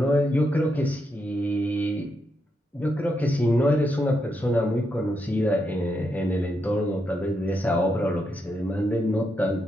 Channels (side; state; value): both; normal; correlation 0.82